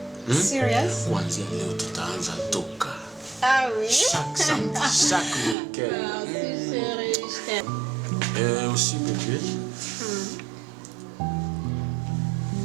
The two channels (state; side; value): drops out; left; at 5.6 s